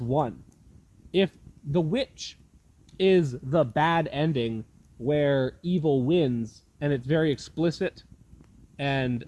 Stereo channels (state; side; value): identical; both; correlation 1.00